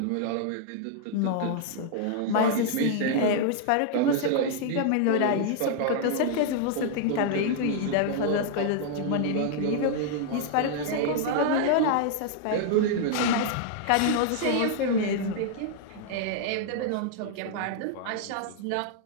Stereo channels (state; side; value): different; both; correlation -0.01